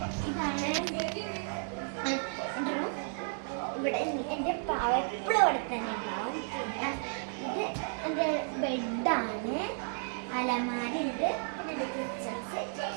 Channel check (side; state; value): left; silent; 56 dB below the other